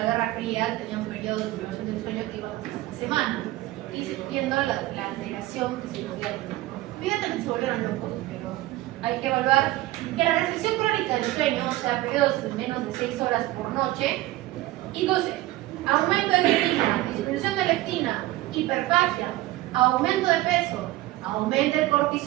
Guerra Fría tenían periodos de privación del sueño que iban hasta una semana, y viendo la alteración que se podía tener. Evidentemente se volvieron locos, pero hay que evaluar que la restricción crónica del sueño, o sea, periodos de menos de 6 horas por noche, induce aumento de grelina, disminución de leptina, hiperfagia, aumento de peso, aumenta el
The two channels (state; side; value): quieter; left; 17.1 dB